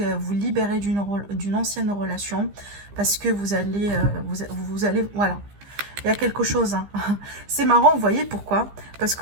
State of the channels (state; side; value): late; left; 15 ms